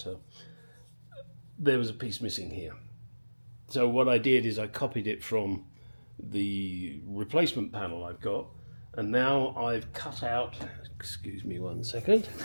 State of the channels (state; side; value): inverted; both; correlation -1.00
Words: there was a piece missing here. So what I did is I copied it from the replacement panel I've got, and now I've cut out, excuse me one second,